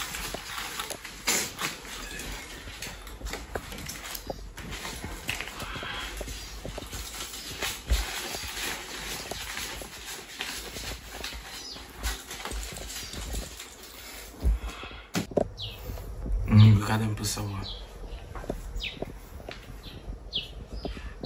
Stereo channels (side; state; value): both; identical; correlation 1.00